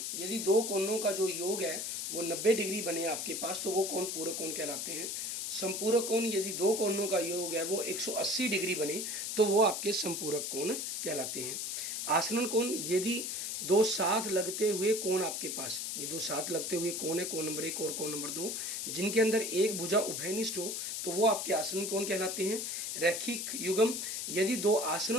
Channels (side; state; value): left; noise; hiss, 3 dB below the sound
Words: यदि दो कोणों का जो योग है वो 90 डिग्री बने आपके पास, तो वो कोण पूरक कोण कहलाते हैं। संपूरक कोण यदि दो कोणों का योग है वो 180 डिग्री बने, तो वो आपके संपूरक कोण कहलाते हैं। आसरण कोण यदि दो साथ लगते हुए कोण आपके पास, ये दो साथ लगते हुए कोण है, कोण नंबर 1 और कोण नंबर 2, जिनके अंदर एक भुजा उभयनिष्ठ हो, तो वो आपके आसरण कोण कहलाते हैं। रैखिक युग्म यदि दो